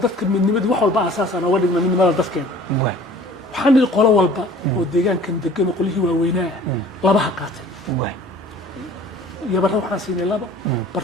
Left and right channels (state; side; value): normal; both; correlation 0.49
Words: dadka midnimadii wax walba asaas aan uga dhigno midnimada dadkeena waxaan idin qolo walba oo deegaankan degan qolihii waaweynaa laba ha qaatay yabara waxaan siinay labo